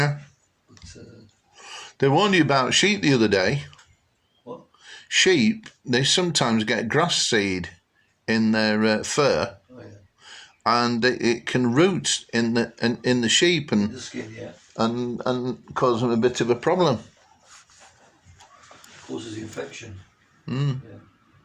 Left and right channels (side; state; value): both; identical; correlation 1.00